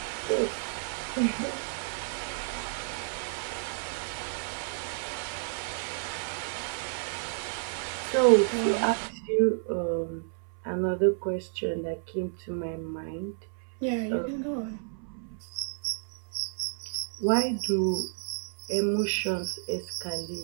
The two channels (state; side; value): silent; left; 57 dB below the other